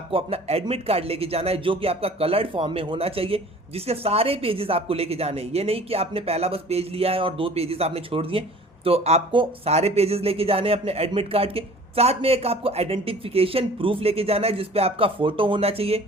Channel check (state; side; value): normal; both; correlation 0.47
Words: अपना एडमिट कार्ड लेके जाना है जो कि आपका कलर्ड फॉर्म में होना चाहिए, जिसके सारे पेजेस आपको लेके जाने हैं। ये नहीं कि आपने पहला बस पेज लिया है और दो पेजेस आपने छोड़ दिए। तो आपको सारे पेजेस लेके जाने हैं अपने एडमिट कार्ड के साथ में। एक आपको आइडेंटिफिकेशन प्रूफ लेके जाना है जिसपे आपका फोटो होना चाहिए